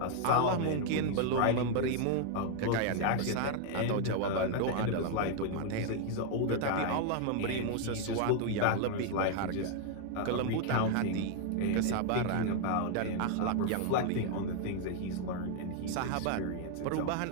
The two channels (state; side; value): different; both; correlation 0.00